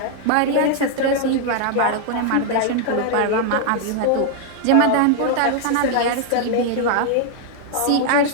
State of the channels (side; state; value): both; different; correlation 0.00